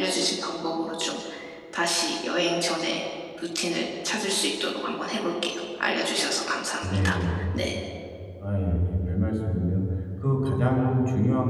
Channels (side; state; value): both; identical; correlation 1.00